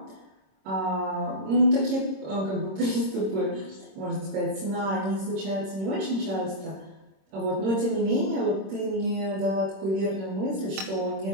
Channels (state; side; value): late; left; 26 ms